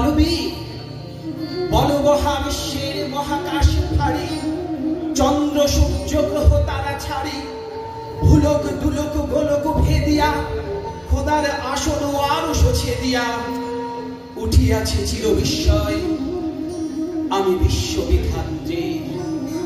বল মহাবিশ্বের মহাকাশ ফাড়ি, চন্দ্র সূর্য গ্রহ তারা ছাড়ি, ভুলক দুলক গোলক ভেদিয়া খোদার আসন আরো ছেদিয়া উঠিয়াছে চির বিস্ময় আমি বিশ্ববিধাত্রী।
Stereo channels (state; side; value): identical; both; correlation 1.00